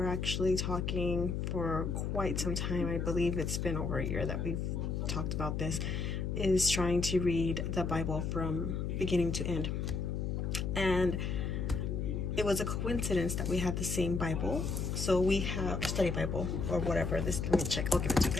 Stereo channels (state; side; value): noise; left; hum, 1 dB below the sound